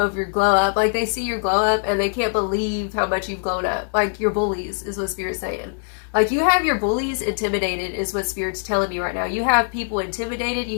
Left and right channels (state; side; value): silent; right; 62 dB below the other